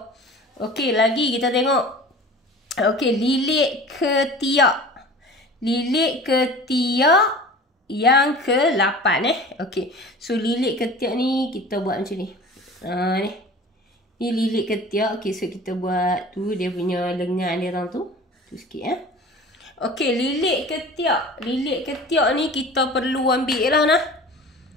Okey, lagi kita tengok. Okey, lilit ketiak. Lilit ketiak yang ke-8 Okey. So lilit ketiak ni kita buat macam ni. Ni. Ni lilit ketiak. Okey, so kita buat tu dia punya lengan dia tu. Tu sikit Okey, lilit ketiak. Lilit ketiak ni kita perlu ambil lah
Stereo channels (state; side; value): normal; both; correlation 0.40